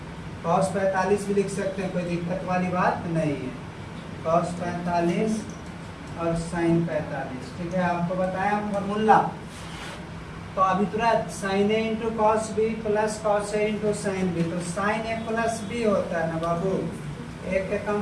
कॉस 45 भी लिख सकते हैं, कोई दिक्कत वाली बात नहीं है। कॉस 45 और साइन 45, ठीक है। आपको बताया फॉर्मूला। तो अभी तुरंत sine A into cos B plus cos A into sine B, तो साइन ए प्लस बी होता है ना बाबू। ए के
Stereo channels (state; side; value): identical; both; correlation 1.00